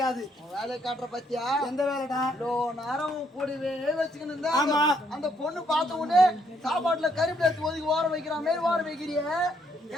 வேலை காட்டுற பத்தியா? எந்த வேலைடா? நேரம் கூடவே வச்சுக்கணும். ஆமா, அந்த பொண்ணு பார்த்த உடனே சாப்பாட்டுல கருப்பு எடுத்து ஒதுக்கி ஓர வைக்கிற மாதிரி ஓர வைக்கிறிய.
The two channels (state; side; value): normal; both; correlation 0.72